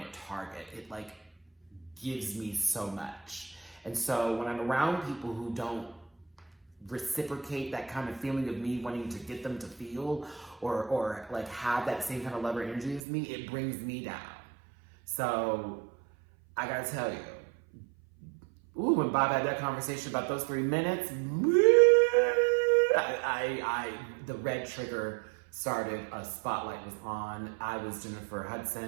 at Target, it like gives me so much. And so when I'm around people who don't reciprocate that kind of feeling of me wanting to get them to feel or like have that same kind of love or energy as me, it brings me down. So I gotta tell you, when Bob had that conversation about those 3 minutes, the red trigger started, a spotlight was on. I was Jennifer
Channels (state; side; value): drops out; left; at 13.0 s